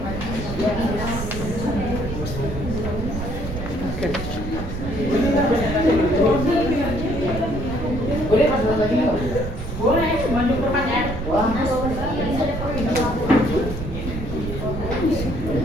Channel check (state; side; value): noise; right; rumble, 6 dB below the sound